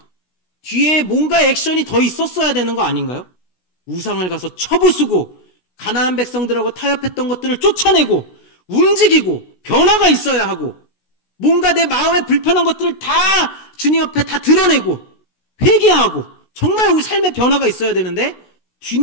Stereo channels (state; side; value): late; right; 16 ms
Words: 뒤에 뭔가 액션이 더 있었어야 되는 거 아닌가요? 우상을 가서 쳐부수고 가나안 백성들하고 타협했던 것들을 쫓아내고 움직이고 변화가 있어야 하고 뭔가 내 마음에 불편한 것들을 다 주님 앞에 다 드러내고 회개하고 정말 우리 삶의 변화가 있어야 되는데